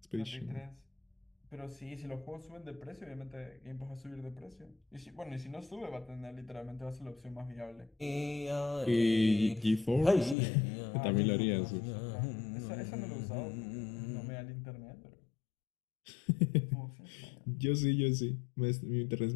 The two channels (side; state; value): right; drops out; at 10.4 s